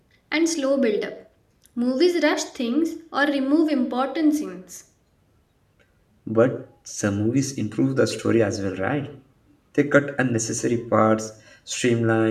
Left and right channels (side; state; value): both; identical; correlation 1.00